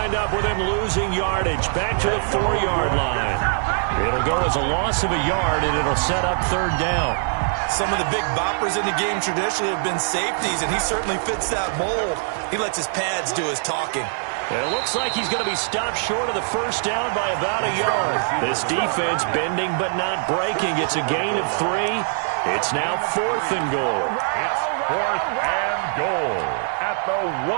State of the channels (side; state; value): left; silent; digital silence